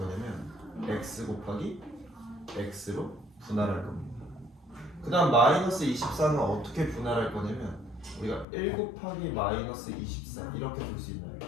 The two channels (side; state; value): right; drops out; at 8.5 s